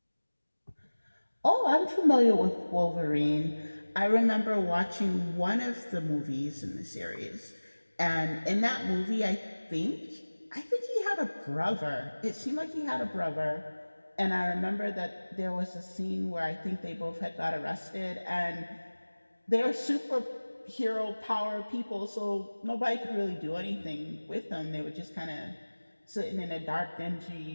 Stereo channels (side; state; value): both; inverted; correlation -1.00